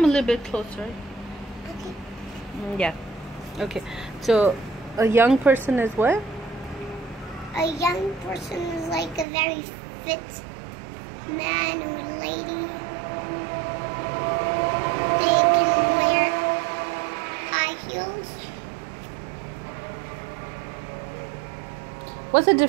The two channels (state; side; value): drops out; left; at 9.2 s